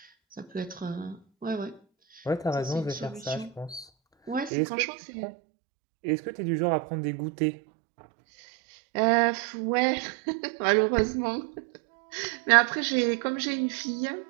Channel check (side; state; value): left; drops out; at 4.5 s